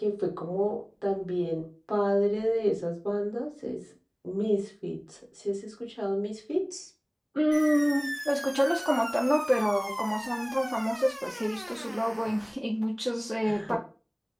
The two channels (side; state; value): both; identical; correlation 1.00